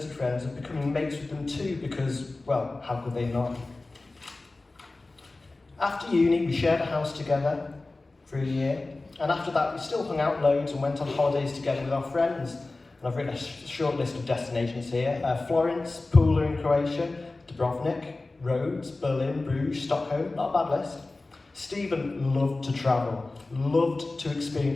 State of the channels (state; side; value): quieter; right; 3.2 dB